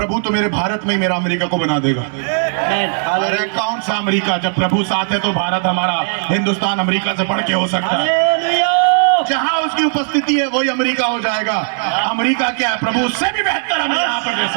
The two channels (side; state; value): left; silent; 65 dB below the other